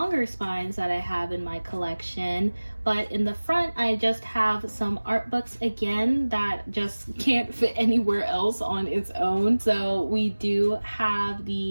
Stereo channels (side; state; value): both; inverted; correlation -1.00